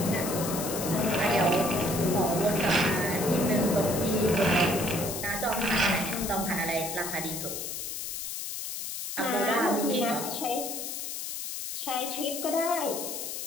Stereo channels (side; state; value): left; noise; hiss, 5 dB below the sound